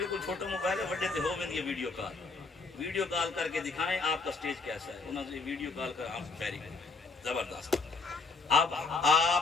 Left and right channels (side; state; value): right; quieter; 4.0 dB